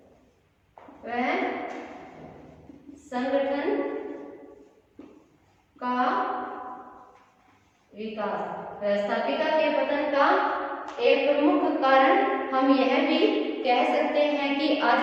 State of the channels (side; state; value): both; identical; correlation 1.00